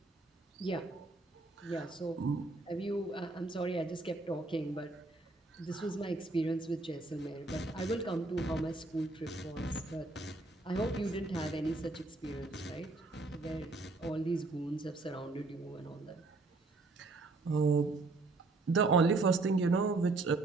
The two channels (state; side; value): quieter; left; 3.3 dB